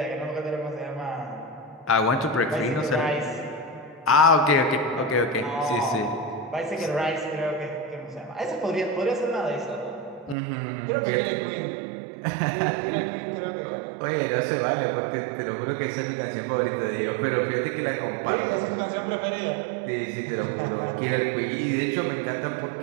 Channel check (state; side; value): drops out; left; at 10.4 s